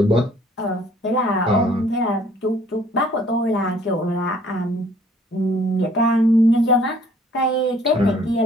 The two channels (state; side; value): normal; both; correlation 0.58